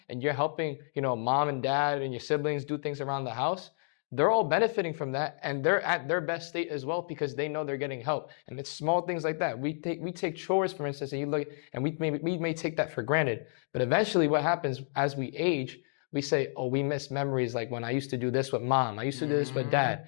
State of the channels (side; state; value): right; silent; digital silence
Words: and you're helping, mom and dad and your siblings do things around the house, they're all benefiting from that, and they're at their best state as well because they know they're getting help. And it's small things like that. We take chores, for instance, and you look, and we may take that for granted. But eventually, what happens as we age, we say, oh, we miss memories like when I used to do this with mom, I used to do this with